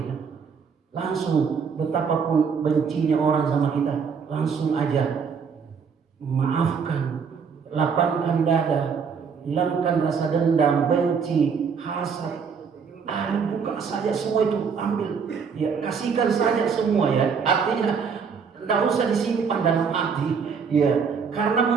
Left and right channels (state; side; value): quieter; left; 6.1 dB